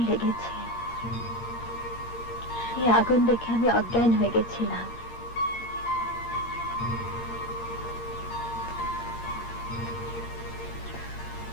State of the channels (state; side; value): late; right; 8.6 ms